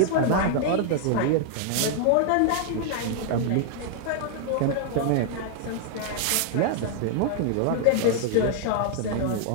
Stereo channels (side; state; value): both; different; correlation -0.01